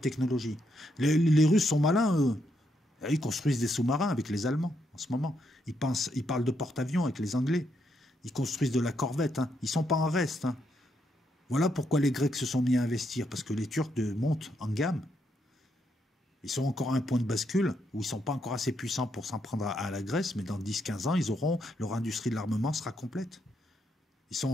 technologie. Les Russes sont malins, eux. Ils construisent des sous-marins avec les Allemands, en ce moment. Ils parlent de porte-avions avec les Anglais. Ils construisent de la corvette. Hein. Ils ne sont pas en reste. Hein. Voilà pourquoi les Grecs se sont mis à investir, parce que les Turcs montent en gamme. Ils sont encore à un point de bascule où ils ne sont pas encore assez puissants pour s'en prendre à la Grèce, mais dans 10-15 ans, leur industrie de l'armement sera complète. Ils sont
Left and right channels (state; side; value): normal; both; correlation 0.78